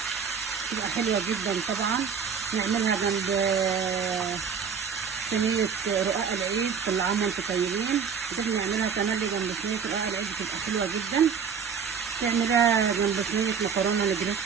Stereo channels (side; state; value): left; quieter; 6.6 dB